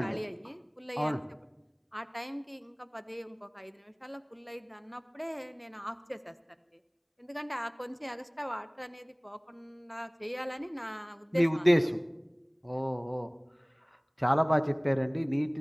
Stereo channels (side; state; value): both; identical; correlation 1.00